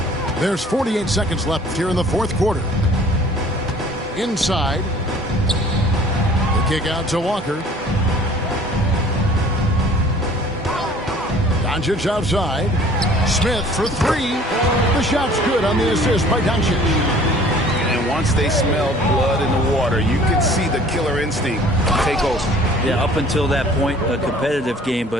There's 48 seconds left here in the fourth quarter. Inside. The kick out to Walker. Doncic outside. Smith for three. The shot's good on the assist by Doncic. And once they smelled blood in the water, you could see the killer instinct take over. Yeah, up until that point, a competitive game,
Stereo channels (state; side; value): normal; both; correlation 0.51